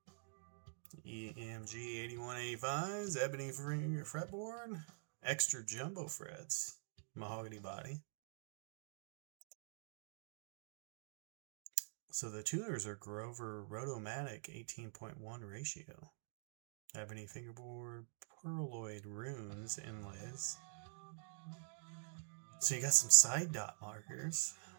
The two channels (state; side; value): silent; left; digital silence